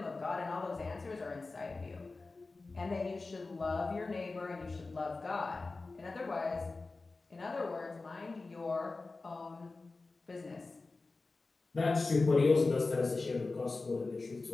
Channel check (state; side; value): quieter; right; 3.6 dB